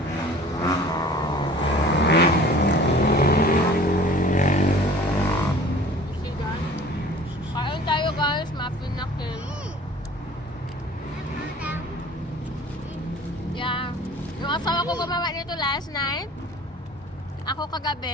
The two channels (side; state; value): both; normal; correlation 0.47